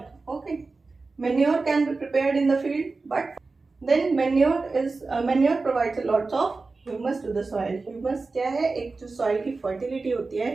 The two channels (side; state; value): left; quieter; 3.9 dB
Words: Okay, manure can be prepared in the field, but then manure provides a lots of humus to the soil. Humus क्या है? एक जो soil की fertility होती है,